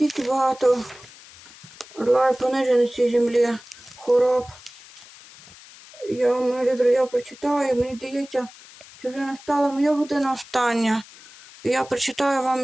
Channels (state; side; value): noise; left; hiss, 21 dB below the sound